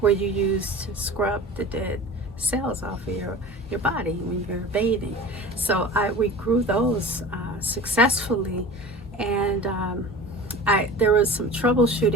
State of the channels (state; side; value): normal; both; correlation 0.36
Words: where you use to scrub the dead cells off of your body when you're bathing. So we grew those successfully, and there was some